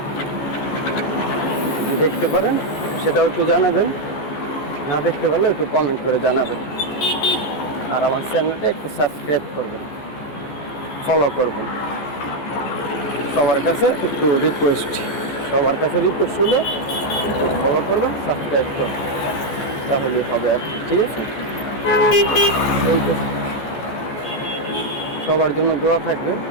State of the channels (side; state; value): right; late; 14 ms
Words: দেখতে পারেন সেটাও একটু জানাবেন, না দেখতে পারলেও একটু কমেন্ট করে জানাবেন। আর আমার চ্যানেলটা একটু সাবস্ক্রাইব করবেন, ফলো করবেন। সবার কাছে একটু রিকোয়েস্ট, সবার কাছে রিকোয়েস্ট হলে ফলো করবেন, সাবস্ক্রাইব করবেন, তাহলেই হবে আর কি, ঠিক আছে? সবার জন্য দোয়া থাকবে,